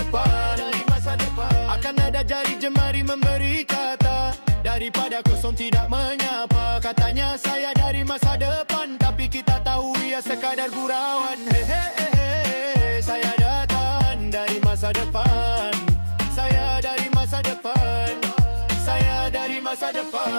depan. Akan ada jari jemari memberi kata, daripada kosong tidak menyapa. Katanya saya dari masa depan, tapi kita tahu ia sekadar gurauan. Saya datang dari masa depan. Saya dari masa depan. Saya dari masa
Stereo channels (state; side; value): inverted; both; correlation -1.00